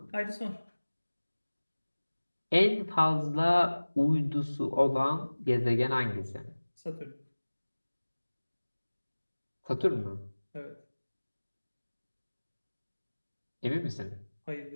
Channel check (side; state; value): both; inverted; correlation -1.00